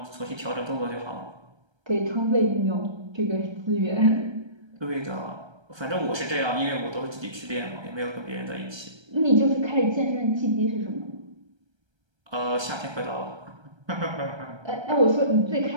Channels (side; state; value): left; late; 1.3 ms